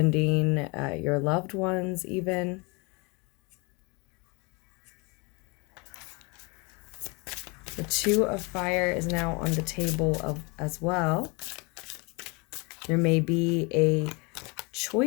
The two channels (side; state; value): right; quieter; 29.1 dB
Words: your loved ones even. The Two of Fire is now on the table as well. There may be a